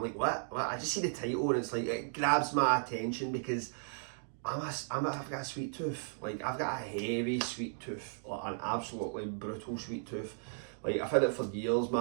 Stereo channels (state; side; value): silent; left; digital silence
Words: like, what? I just see the title and it's like, it grabs my attention because I've got a sweet tooth. Like, I've got a heavy sweet tooth, like an absolutely brutal sweet tooth. Like, I've had it for years,